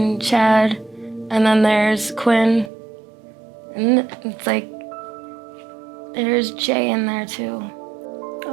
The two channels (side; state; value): left; drops out; at 2.7 s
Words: Chad, and then there's Quinn, and it's like there's Jay in there too.